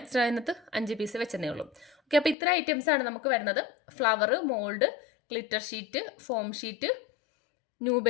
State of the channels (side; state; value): right; drops out; at 2.4 s